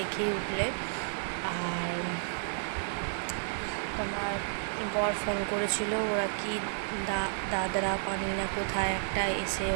উঠলে। আর তোমার বর ফোন করেছিল, ওরা কি দাদরা পানি না কোথায় একটা এসে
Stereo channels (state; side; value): silent; left; digital silence